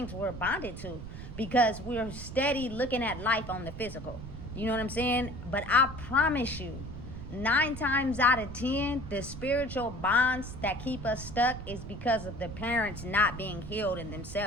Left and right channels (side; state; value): right; noise; rumble, 10 dB below the sound